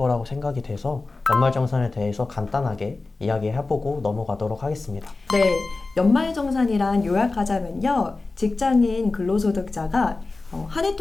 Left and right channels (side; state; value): right; quieter; 3.5 dB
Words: 생각이 돼서 연말정산에 대해서 간단하게 이야기해보고 넘어가도록 하겠습니다. 네, 연말정산이란 요약하자면요. 직장인 근로소득자가 한 해